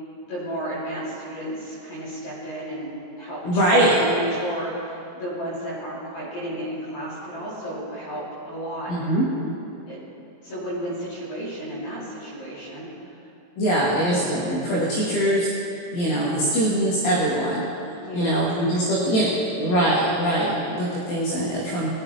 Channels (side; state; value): right; late; 23 ms